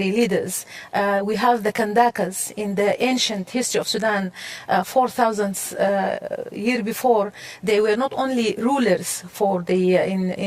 leaders. We have the Kandakas in the ancient history of Sudan, 4,000 years before. They were not only rulers for the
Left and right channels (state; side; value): identical; both; correlation 1.00